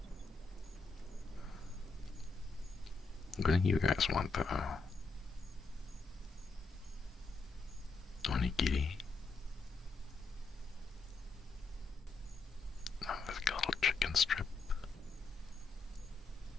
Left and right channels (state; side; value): quieter; right; 4.1 dB